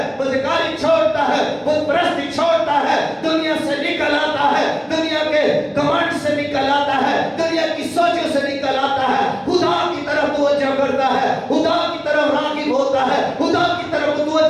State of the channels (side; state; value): both; identical; correlation 1.00